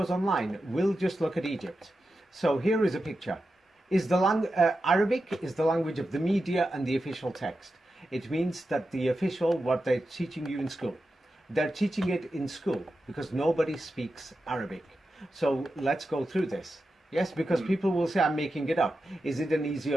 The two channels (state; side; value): normal; both; correlation 0.90